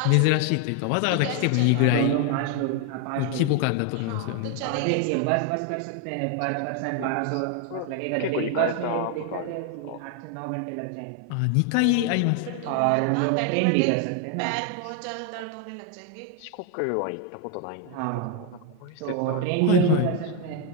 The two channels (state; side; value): different; both; correlation 0.01